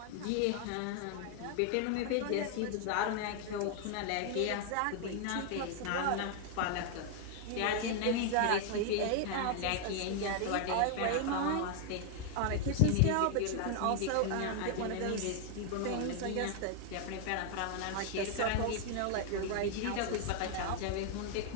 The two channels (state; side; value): different; both; correlation 0.00